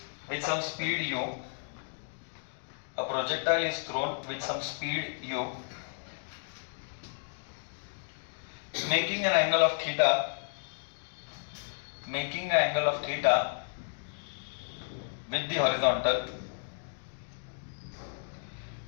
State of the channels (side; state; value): right; silent; digital silence